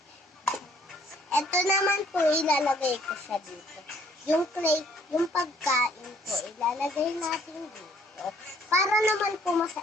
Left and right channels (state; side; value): normal; both; correlation 0.62